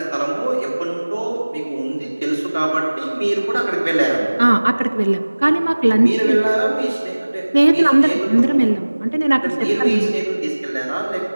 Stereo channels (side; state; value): both; inverted; correlation -1.00